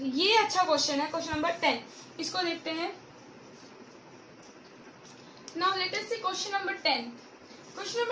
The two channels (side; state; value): both; identical; correlation 1.00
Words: ये अच्छा क्वेश्चन है, क्वेश्चन नंबर 10 इसको देखते हैं। नाउ लेट अस सी क्वेश्चन नंबर 10। क्वेश्चन